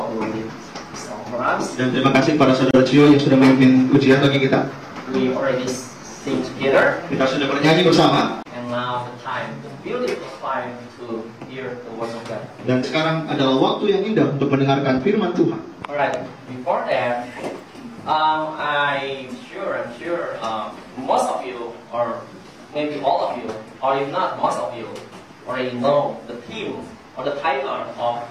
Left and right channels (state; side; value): identical; both; correlation 1.00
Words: who did this song for us. Dan terima kasih kepada saudara Cio yang sudah memimpin ujian bagi kita. We already sing together. Kita sudah bernyanyi bersama. And now the time, the beautiful time to hear the words of God. Dan sekarang adalah waktu yang indah untuk mendengarkan firman Tuhan. Alright, before that, I'm sure, most of you, or maybe all of you, or if not most of you, already know the theme or the title of